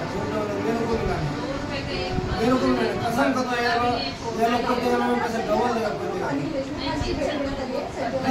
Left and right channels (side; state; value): both; identical; correlation 1.00